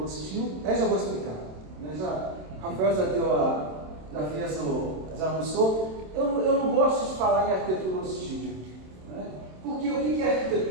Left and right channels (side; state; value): left; late; 27 ms